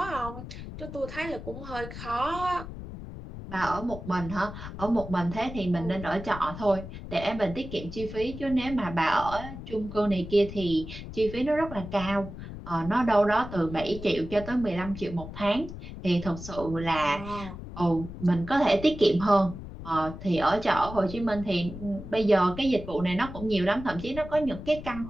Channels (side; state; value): left; noise; rumble, 11 dB below the sound